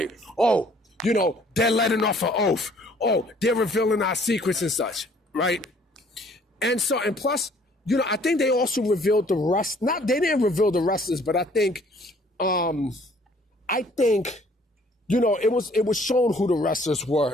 Oh, they're letting off an oath. Oh, they're revealing our secrets and such, right? And plus, I think they also revealed the rest. They didn't reveal the wrestlers, but I think, it was shown who the wrestlers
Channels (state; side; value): normal; both; correlation 0.59